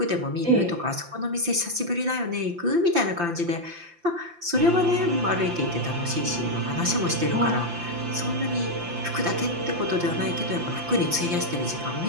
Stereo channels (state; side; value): late; left; 5.8 ms